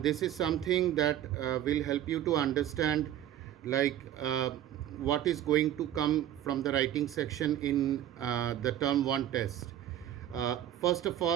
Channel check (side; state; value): left; quieter; 11.6 dB